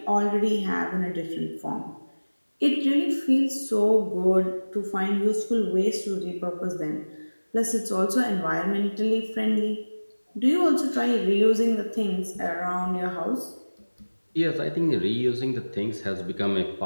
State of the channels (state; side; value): inverted; both; correlation -1.00